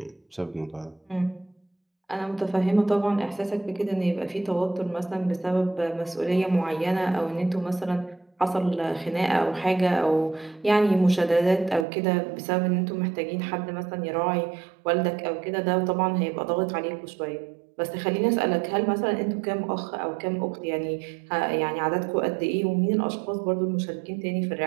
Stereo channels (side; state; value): left; drops out; at 11.9 s